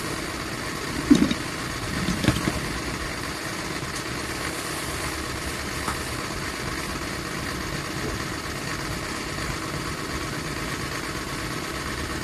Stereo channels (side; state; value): both; identical; correlation 1.00